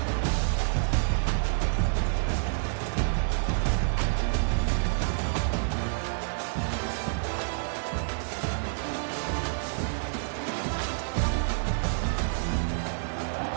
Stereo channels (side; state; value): left; silent; digital silence